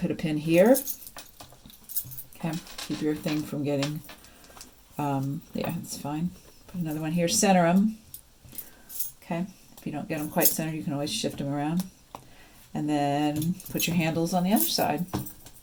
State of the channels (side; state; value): both; identical; correlation 1.00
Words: pin here. Okay, keep your thing from getting, yeah, it's fine. Put another one here. Center them. Okay, if you don't get them quite centered, you can always shift them around. And then put your handles on the other side.